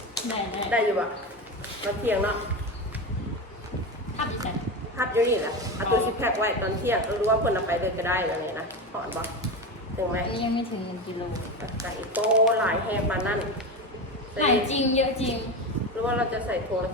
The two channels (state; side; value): normal; both; correlation 0.21